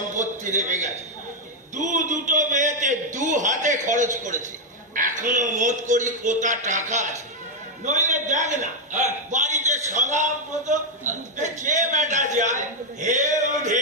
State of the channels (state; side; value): normal; both; correlation 0.01